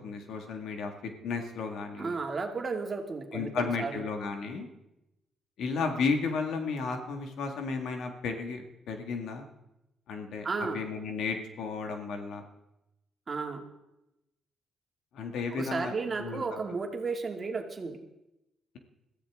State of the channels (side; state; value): both; normal; correlation 0.69